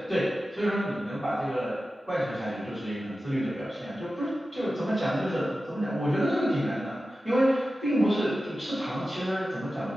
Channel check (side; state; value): both; normal; correlation 0.94